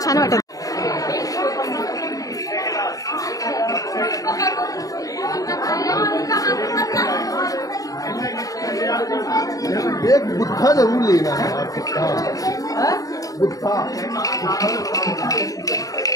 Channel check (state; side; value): late; right; 0.17 ms